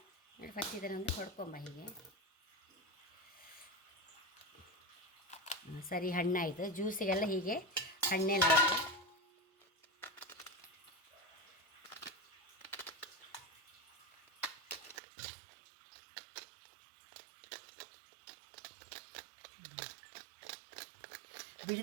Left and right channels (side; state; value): left; drops out; at 15.0 s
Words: ನೋಡಿ ಫಸ್ಟ್ ಇದನ್ನೊಂದು ಹೊಡ್ಕೊಂಬ ಹೀಗೆ. ಸರಿ, ಹಣ್ಣಾಯಿತು. ಜ್ಯೂಸಿಗೆಲ್ಲ ಹೀಗೆ ಹಣ್ಣೆಲ್ಲ